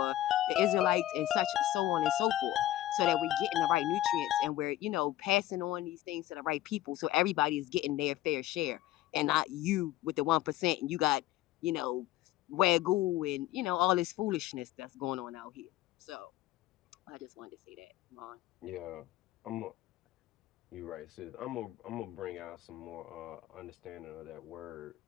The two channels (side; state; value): right; quieter; 14.5 dB